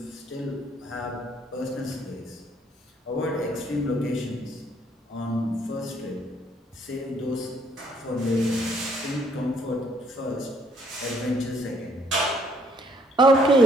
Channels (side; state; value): both; normal; correlation 0.65